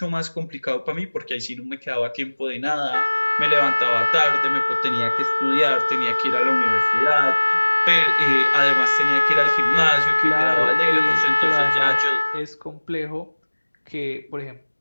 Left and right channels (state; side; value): inverted; both; correlation -1.00